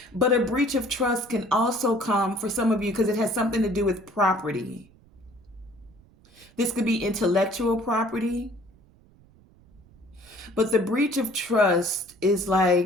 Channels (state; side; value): noise; right; rumble, 28 dB below the sound